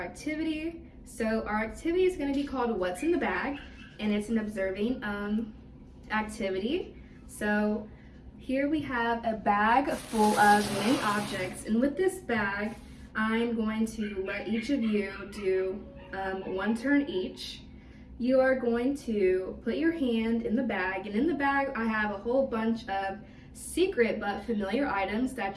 activity. So our activity is going to be called What's in the Bag, and it's an observing activity. So here we have a bag full of many objects, and with this bag I'm going to let each of you do one turn each. You are going to put your hand in the bag, and in the bag I have a whole bunch of secret but familiar items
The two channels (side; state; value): both; identical; correlation 1.00